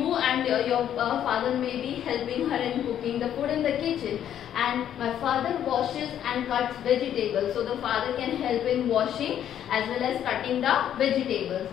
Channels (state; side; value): quieter; right; 10.3 dB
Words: and your father may be helping her in cooking the food in the kitchen. And my father washes and cuts vegetables. So the father can help in washing as well as cutting the vegetables.